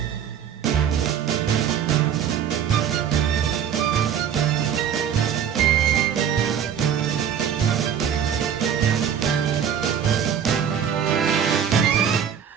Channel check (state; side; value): quieter; left; 8.5 dB